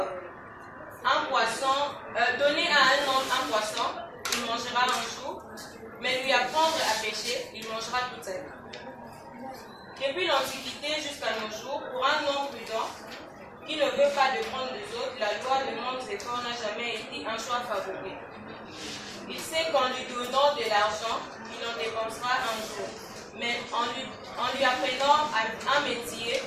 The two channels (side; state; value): both; identical; correlation 1.00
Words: un poisson, donner à un homme un poisson, il mangera un jour, mais lui apprendre à pêcher, il mangera toute sa vie. Depuis l'Antiquité jusqu'à nos jours, pour un homme prudent qui ne veut pas de prendre des autres, la loi de manque d'efforts n'a jamais été un choix favori. Il sait qu'en lui donnant de l'argent, il en dépensera un jour. Mais en lui apprenant un métier,